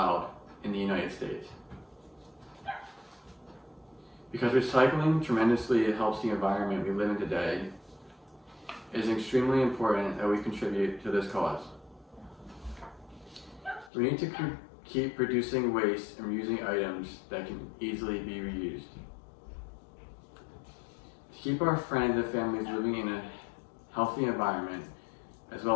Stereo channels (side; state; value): right; drops out; at 13.9 s